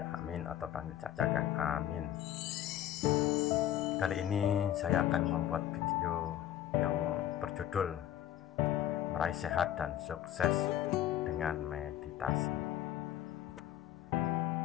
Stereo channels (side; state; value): right; quieter; 11.8 dB